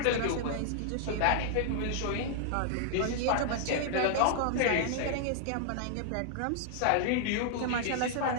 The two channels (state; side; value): different; both; correlation -0.01